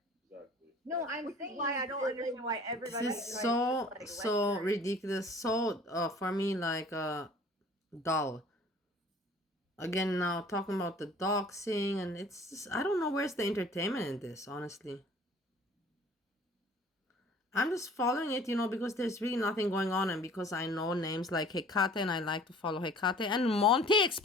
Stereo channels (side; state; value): both; normal; correlation 0.50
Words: Exactly. No, I'm Which is saying why I don't that, understand why everybody This is tries to, so like, so lecture. ridiculous, so for me, like dull. Again, now talking about the doxing, and it's just, I don't know where's the entertainment in this, honestly. I'm just following it, because there's really nothing going on, and because I know names like Hekate, and I like to follow Hekate, and Monty,